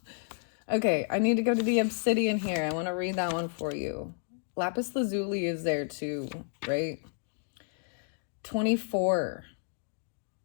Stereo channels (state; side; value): silent; right; digital silence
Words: Okay, I need to go to the obsidian here. I want to read that one for you. Lapis lazuli is there too, right? 24.